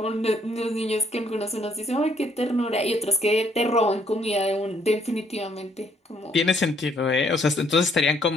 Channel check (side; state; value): both; normal; correlation 0.67